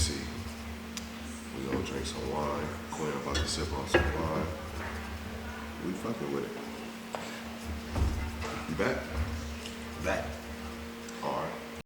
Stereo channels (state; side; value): identical; both; correlation 1.00